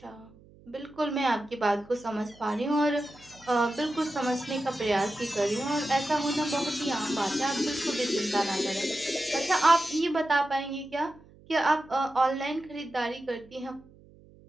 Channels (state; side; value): noise; right; hum, 25 dB below the sound